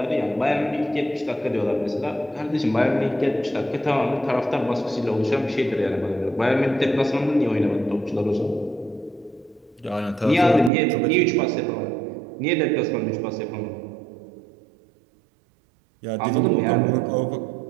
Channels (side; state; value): left; drops out; at 10.7 s